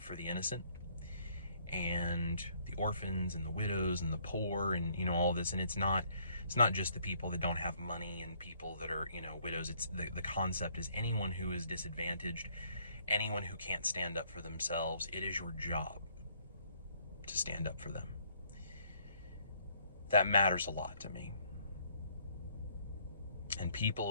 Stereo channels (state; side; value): inverted; both; correlation -0.64